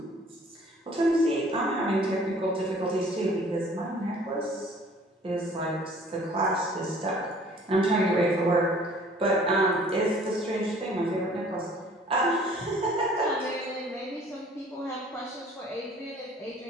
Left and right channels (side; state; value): both; normal; correlation 0.54